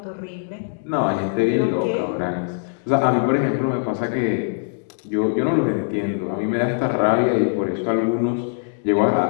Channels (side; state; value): right; silent; digital silence